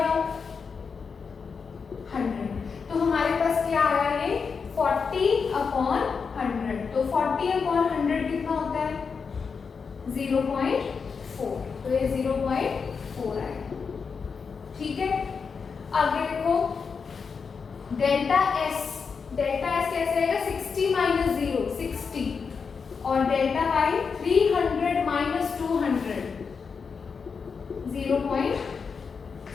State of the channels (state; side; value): quieter; right; 5.6 dB